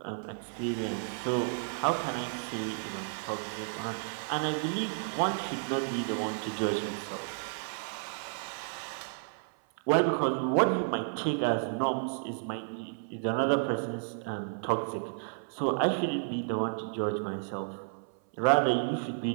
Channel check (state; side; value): silent; left; 56 dB below the other